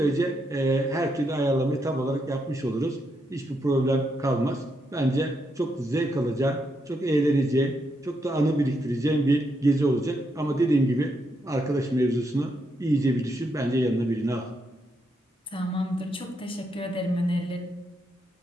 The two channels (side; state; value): both; normal; correlation 0.80